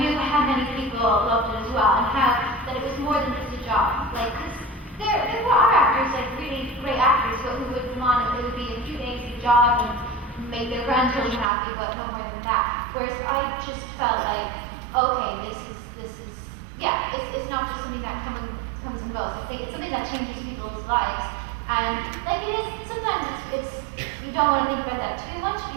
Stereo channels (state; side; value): drops out; left; at 11.5 s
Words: how many people loved it as well, and how that it was more than just a job. Like, because there are actors, like really great actors, but who would come on and it would be a few days of a job and make their grandchildren happy, but no more than that. Whereas I just felt like, okay, this is yeah, it's not just something that comes and goes. It's something that changes people's lives. And like it is, sometimes it's you don't want to think about that too much